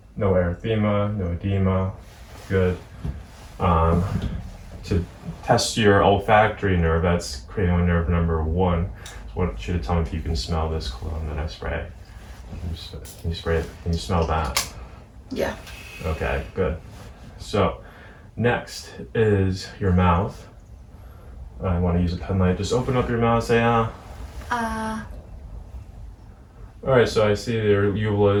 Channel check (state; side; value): identical; both; correlation 1.00